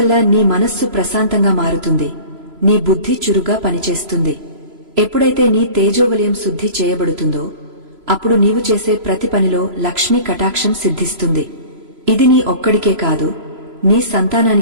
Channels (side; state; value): left; late; 3.0 ms